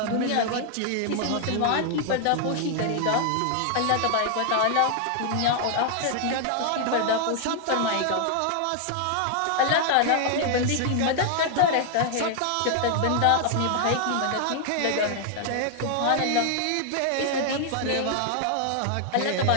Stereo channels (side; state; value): both; different; correlation 0.00